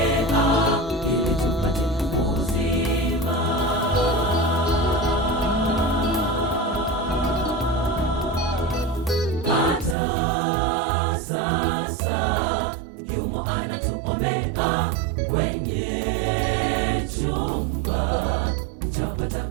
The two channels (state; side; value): drops out; left; at 10.0 s